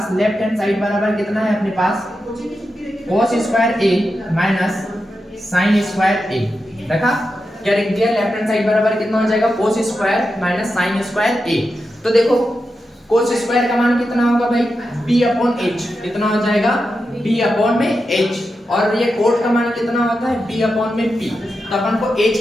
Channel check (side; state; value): both; normal; correlation 0.89